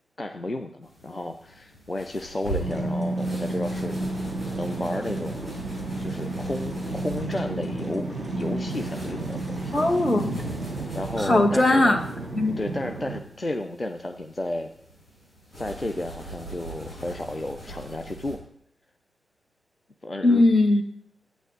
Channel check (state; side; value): normal; both; correlation 0.86